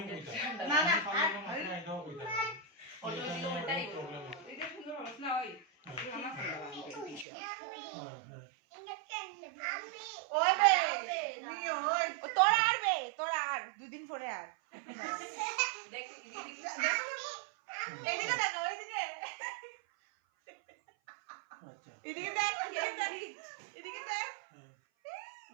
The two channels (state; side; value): drops out; left; at 7.2 s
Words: না না ফটো দিকে ওটাই এটা সুন্দর হবে না ওই ওই বে তুমি ওই তোরা আর দুদিন পরে আর দেখ এদিকে দেখো ওইদিকে আচ্ছা এদিকে দেখ এদিকে দেখ